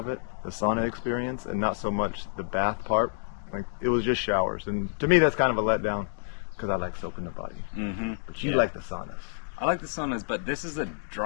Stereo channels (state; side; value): silent; right; digital silence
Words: it, the sauna experience, and not so much the bath part. Like, it was just showers, and to me that's kind of a letdown because I like soaking the body. But you like the saunas. I like the saunas, but this is a